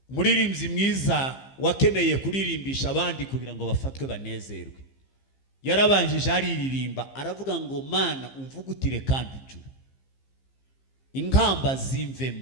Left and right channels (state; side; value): late; right; 15 ms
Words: Umuririmbyi mwiza wakeneye kuririmbisha abandi kugira ngo bafatwe banezerwe yarabanjije ariririmba aravuga ngo Mana umvugutire kandi ujure inkamba